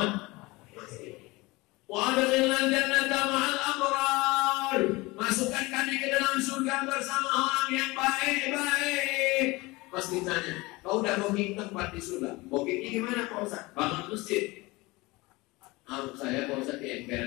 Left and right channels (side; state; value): right; quieter; 22.6 dB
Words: masjid. Wa adkhilnal jannata ma'al abrar. Masukkan kami ke dalam surga bersama orang yang baik-baik. Pasti tanya, kau udah booking tempat di surga? Bookingnya gimana Pak Ustaz? Bangun masjid. Saya Pak Ustaz di